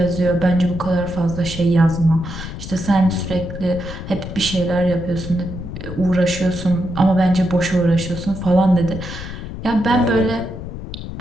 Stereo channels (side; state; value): left; noise; rumble, 9 dB below the sound